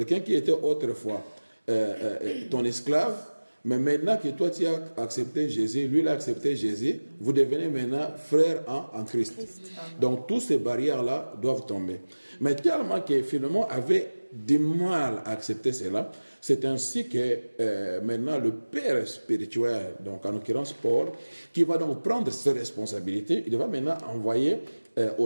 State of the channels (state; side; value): inverted; both; correlation -1.00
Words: qui était autrefois ton esclave, mais maintenant que toi tu as accepté Jésus, lui il a accepté Jésus, vous devenez maintenant frères en Christ. Donc toutes ces barrières-là doivent tomber. Mais tellement que finalement avait du mal à accepter cela, c'est ainsi que maintenant le père spirituel, donc en l'occurrence Paul, qui va donc prendre ses responsabilités, il va maintenant envoyer